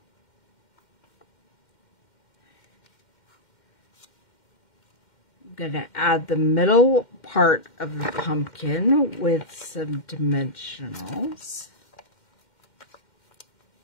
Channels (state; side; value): late; right; 2.1 ms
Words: I'm going to add the middle part of the pumpkin with some dimensionals.